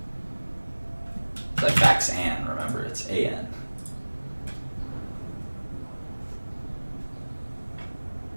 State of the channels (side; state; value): both; inverted; correlation -1.00